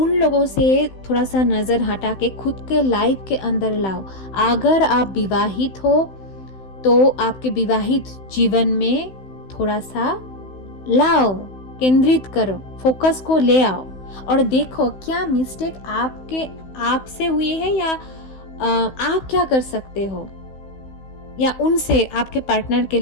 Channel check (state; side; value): late; right; 16 ms